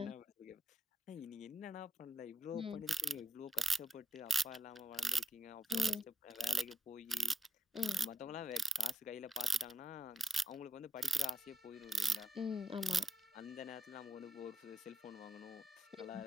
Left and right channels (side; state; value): both; normal; correlation 0.83